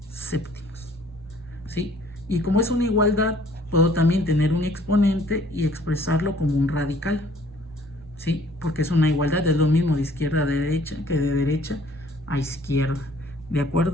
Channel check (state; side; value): normal; both; correlation 0.58